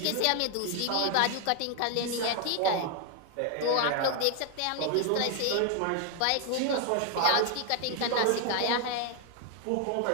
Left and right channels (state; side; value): different; both; correlation 0.00